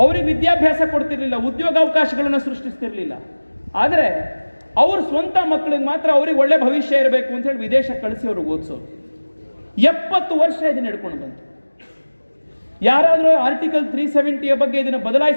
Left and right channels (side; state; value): both; inverted; correlation -1.00